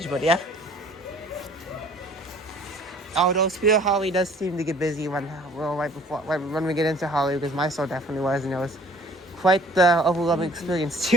but yeah. Although Spirit of Halloween does seem to get busy when we get into Halloween, because my store definitely was, and it was quite the overwhelming experience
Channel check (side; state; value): both; normal; correlation 0.53